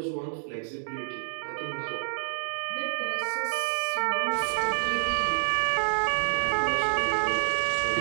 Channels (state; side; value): silent; left; digital silence